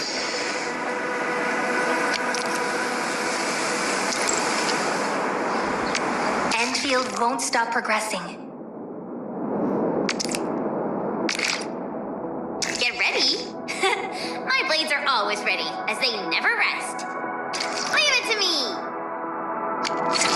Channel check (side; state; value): both; identical; correlation 1.00